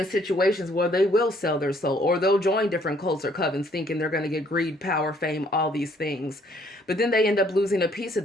situations where they will sell their soul, or they'll join different cults or covens thinking they're going to get greed, power, fame, all these things. But then they end up losing a piece of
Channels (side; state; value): both; normal; correlation 0.64